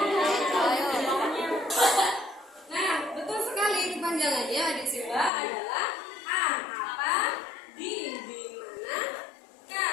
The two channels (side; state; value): right; drops out; at 5.3 s